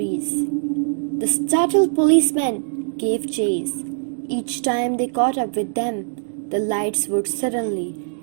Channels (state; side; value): silent; left; digital silence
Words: The startled policemen gave chase. Each time they caught up with them, the lights would suddenly